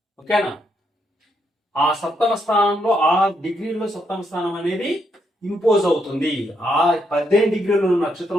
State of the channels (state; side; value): normal; both; correlation 0.78